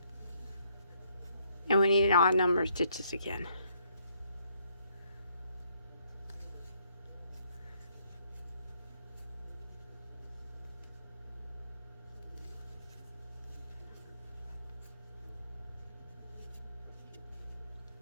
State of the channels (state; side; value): inverted; both; correlation -0.69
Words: and we need an odd number of stitches again.